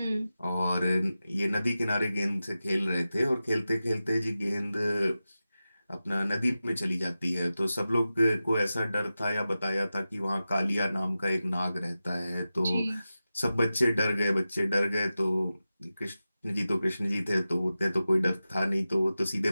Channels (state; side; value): inverted; both; correlation -0.94